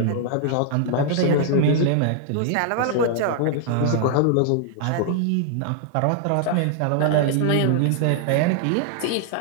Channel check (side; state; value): both; different; correlation -0.01